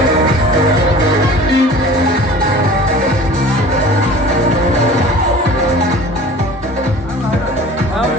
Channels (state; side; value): normal; both; correlation 0.42